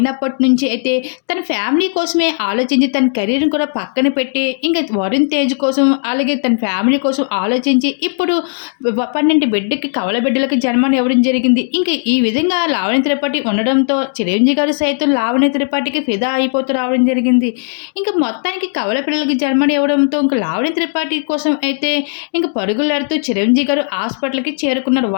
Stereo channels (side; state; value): right; silent; 64 dB below the other